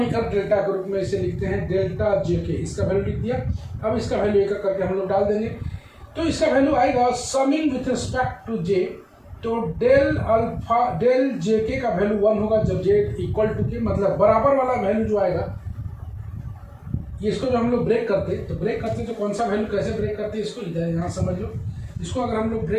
डेल्टा के रूप में इसे लिखते हैं डेल्टा JK, इसका वैल्यू लिख दिया। अब इसका वैल्यू एक करके हम लोग डाल देंगे, तो इसका वैल्यू आएगा summing with respect to j, तो डेल अल्फा डेल JK का वैल्यू 1 होगा जब j इक्वल टू k, मतलब बराबर वाला वैल्यू जो आएगा, इसको जो हम लोग ब्रेक करते तो कौन सा वैल्यू कैसे ब्रेक करते इसको इधर यहाँ समझ लो। इसको अगर हम लोग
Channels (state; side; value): identical; both; correlation 1.00